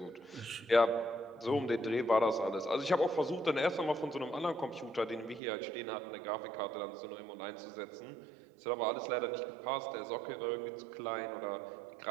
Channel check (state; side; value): drops out; left; at 5.4 s